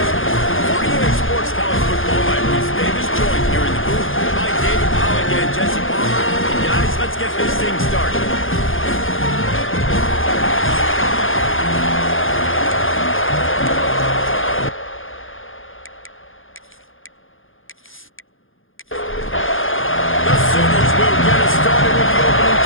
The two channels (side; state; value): right; late; 0.59 ms